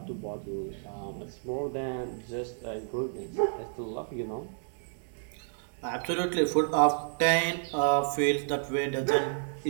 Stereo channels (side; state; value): left; silent; digital silence